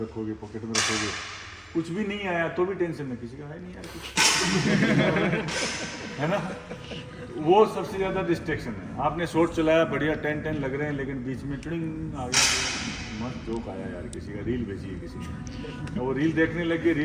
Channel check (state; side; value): identical; both; correlation 1.00